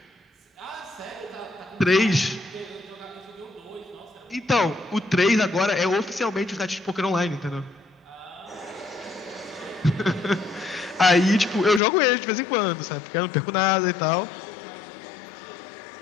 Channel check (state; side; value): drops out; right; at 11.8 s